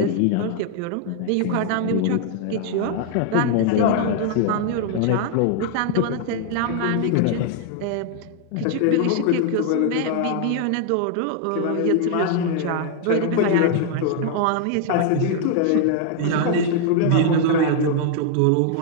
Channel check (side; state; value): both; different; correlation 0.00